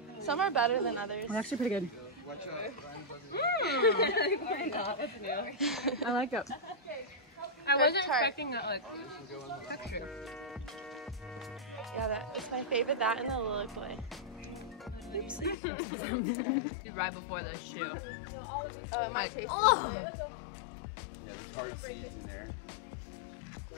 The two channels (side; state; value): right; drops out; at 15.6 s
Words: sour? Some are better than others. Well, actually pretty good. Why not? That's new. I like it. I wasn't tart. expecting that like texture. Yeah, that is my favorite. That and the lily boy. Right before the shoe. My Oh! Yeah, there's hard seeds in there.